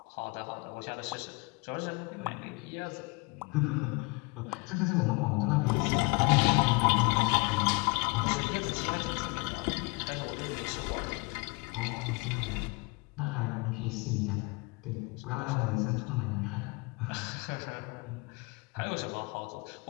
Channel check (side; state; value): right; quieter; 28.2 dB